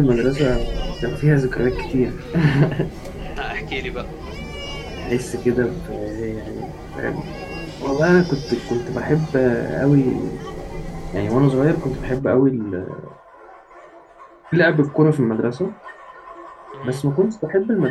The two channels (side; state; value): both; identical; correlation 1.00